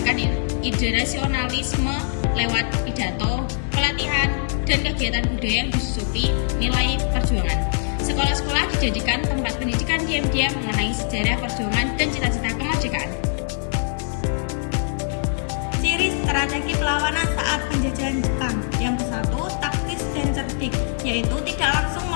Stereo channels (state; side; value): silent; right; 64 dB below the other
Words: ide nasionalisme lewat pidato, pelatihan, dan kegiatan budaya yang disusupi nilai perjuangan. Sekolah-sekolah dijadikan tempat pendidikan diam-diam mengenai sejarah perjuangan dan cita-cita kemerdekaan. Ciri strategi perlawanan saat penjajahan Jepang. Yang ke-1, taktis dan cerdik, yaitu tidak langsung